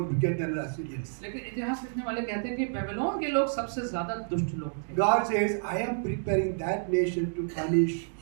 wicked than the Assyrians. लेकिन इतिहास लिखने वाले कहते हैं कि बेबीलोन के लोग सबसे ज्यादा दुष्ट लोग थे। God says, I am preparing that nation to punish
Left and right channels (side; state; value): left; silent; digital silence